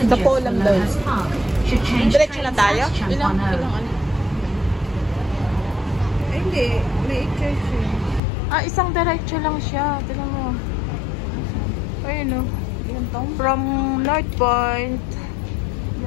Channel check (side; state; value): right; drops out; at 8.2 s